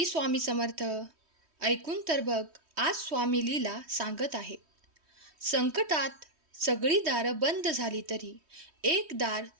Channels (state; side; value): late; left; 3.1 ms